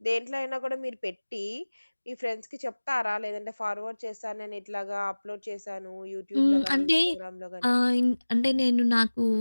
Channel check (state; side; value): inverted; both; correlation -1.00